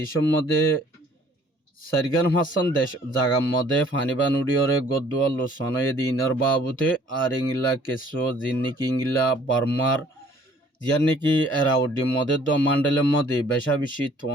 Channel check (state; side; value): normal; both; correlation 0.57